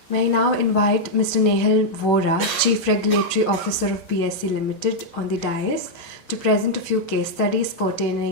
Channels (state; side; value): normal; both; correlation -0.03